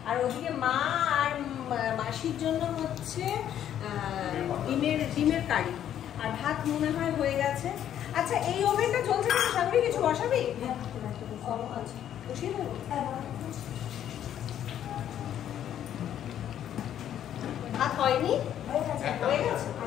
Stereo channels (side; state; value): right; quieter; 10.5 dB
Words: আর ওদিকে মা আর মাসির জন্য হচ্ছে ডিমের কারি, আর ভাত মনে হয় হয়ে গেছে। আচ্ছা, এই ওভেনটা চলছে না, সামনে কিছু বসাবি? বসিয়ে দেবো। ভাত হয়নি, হয়ে গেছে।